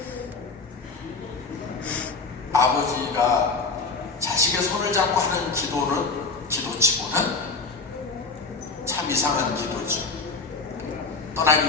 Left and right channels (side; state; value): right; quieter; 4.1 dB